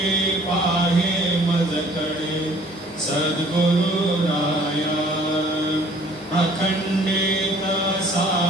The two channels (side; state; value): both; normal; correlation 0.55